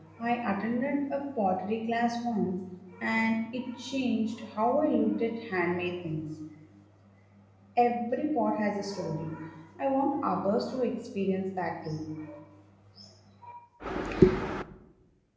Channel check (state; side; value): identical; both; correlation 1.00